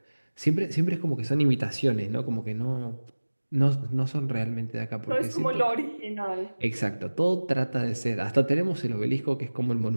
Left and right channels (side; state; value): both; inverted; correlation -1.00